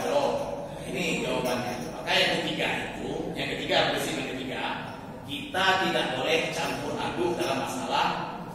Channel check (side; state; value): both; identical; correlation 1.00